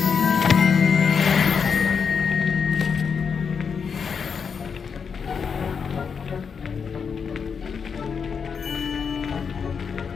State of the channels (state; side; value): quieter; right; 6.2 dB